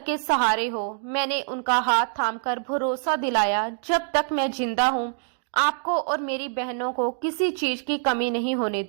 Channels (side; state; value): left; silent; digital silence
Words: सहारे हो। मैंने उनका हाथ थामकर भरोसा दिलाया, जब तक मैं जिंदा हूँ आपको और मेरी बहनों को किसी चीज की कमी नहीं होने